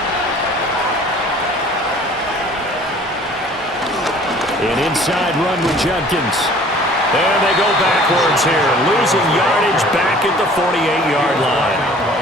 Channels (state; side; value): normal; both; correlation 0.51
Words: An inside run with Judkins. And they go backwards here. Losing yardage back at the 48-yard line.